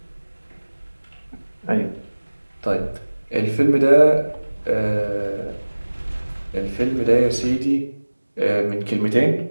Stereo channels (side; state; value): both; inverted; correlation -1.00